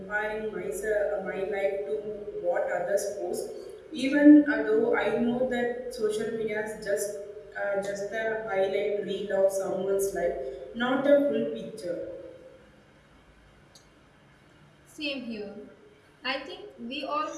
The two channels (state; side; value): identical; both; correlation 1.00